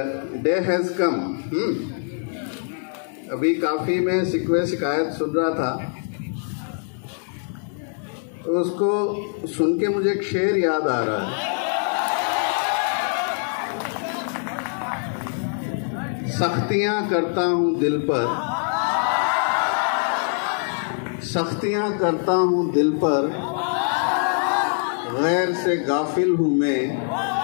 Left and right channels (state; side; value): silent; right; 58 dB below the other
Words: डे हैज़ कम। अभी काफ़ी मैं शिकायत सुन रहा था, तो उसको सुन के मुझे एक शेर याद आ रहा है। सख्तियां करता हूं दिल पर, सख्तियां करता हूं दिल पर, गैर से गाफिल हूं मैं,